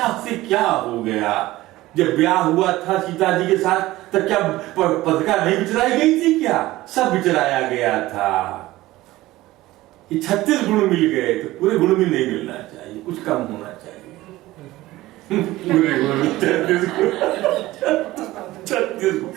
से क्या हो गया। जब ब्याह हुआ था सीता जी के साथ, तब क्या पत्रिका नहीं बिचराई गई थी? क्या सब बिचराया गया था। ये 36 गुण मिल गए, तो पूरे गुण भी नहीं मिलना चाहिए, कुछ कम होना चाहिए। पूरे गुण 36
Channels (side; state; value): left; quieter; 17.5 dB